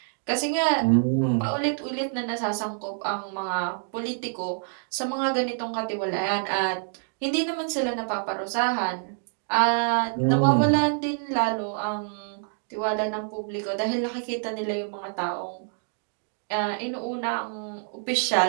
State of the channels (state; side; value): silent; left; 60 dB below the other